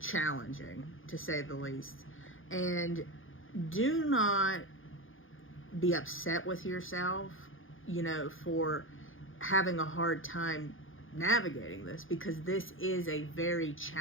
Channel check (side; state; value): right; late; 0.58 ms